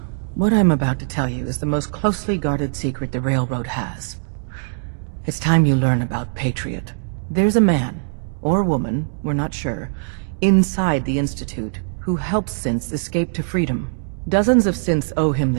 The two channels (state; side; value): silent; left; digital silence